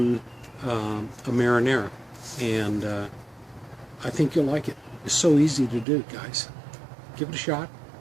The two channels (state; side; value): drops out; left; at 5.9 s